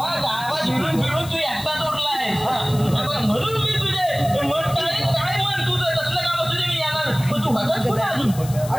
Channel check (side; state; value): left; noise; hiss, 15 dB below the sound